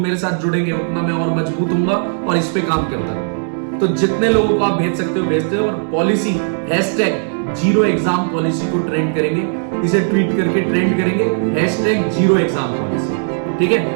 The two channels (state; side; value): silent; left; digital silence